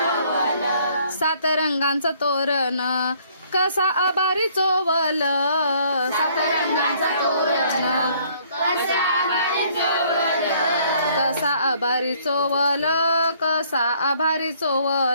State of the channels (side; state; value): both; inverted; correlation -0.62